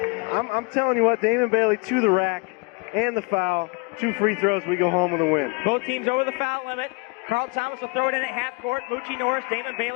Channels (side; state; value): right; quieter; 30.2 dB